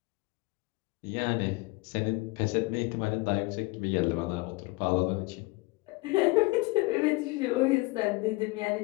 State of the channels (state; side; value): quieter; right; 24.0 dB